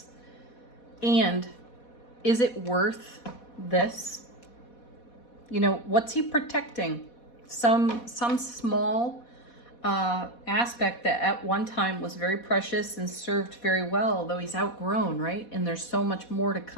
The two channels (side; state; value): right; late; 4.2 ms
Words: And is it worth this? You know, what's he protecting? Some small aspect that at one time was very precious and served very well, though he's outgrown, right? And there's so much more to